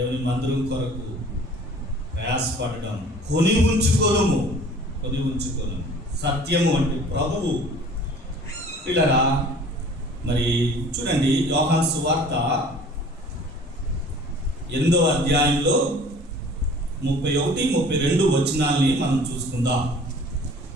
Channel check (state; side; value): normal; both; correlation 0.48